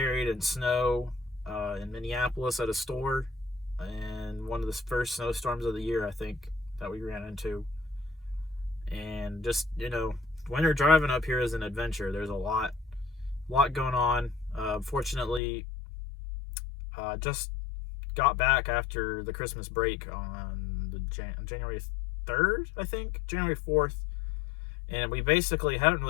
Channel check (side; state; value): right; drops out; at 15.4 s